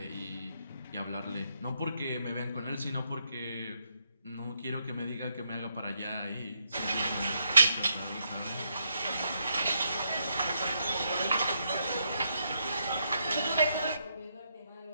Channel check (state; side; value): inverted; both; correlation -0.78